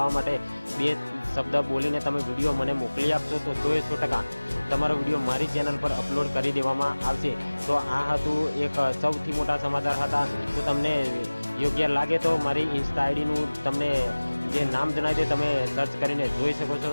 માટે 2 શબ્દ બોલીને તમે વિડીયો મને મોકલી આપશો તો 100% તમારો વિડીયો મારી ચેનલ પર અપલોડ કરી દેવામાં આવશે। તો આ હતું એક સૌથી મોટા સમાચાર હતા। તો તમને યોગ્ય લાગે તો મારી ઇન્સ્ટા આઈડીનું તમને જે નામ જણાવી દે તમે સર્ચ કરીને જોઈ શકો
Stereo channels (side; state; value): both; inverted; correlation -1.00